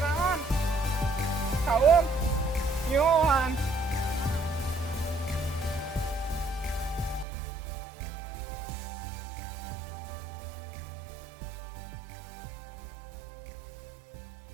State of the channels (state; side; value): drops out; left; at 7.2 s